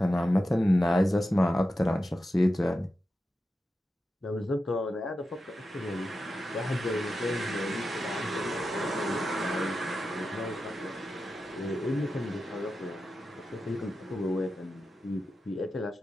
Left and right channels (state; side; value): normal; both; correlation 0.91